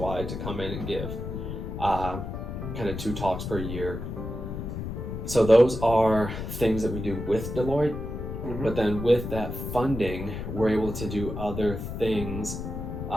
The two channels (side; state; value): left; noise; rumble, 6 dB below the sound